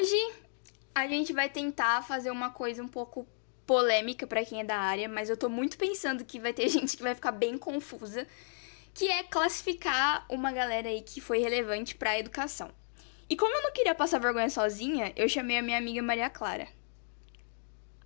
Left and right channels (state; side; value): silent; right; digital silence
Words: a gente vai tentar fazer uma coisa um pouco polêmica pra quem é da área, mas eu tô muito pensando que vai ter gente que vai ficar bem confusa, que é classificar uma galera aí que foi relevante pra educação. E como eu não queria passar vergonha sozinha, eu chamei a minha amiga Maria Clara.